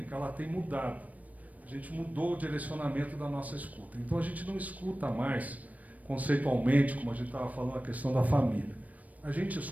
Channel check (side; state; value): left; late; 0.072 ms